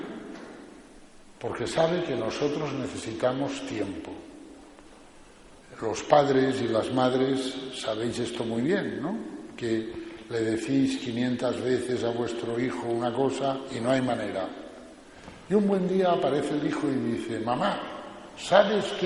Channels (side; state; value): both; identical; correlation 1.00